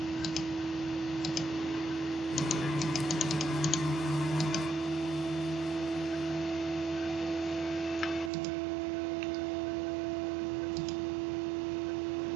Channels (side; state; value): left; drops out; at 8.3 s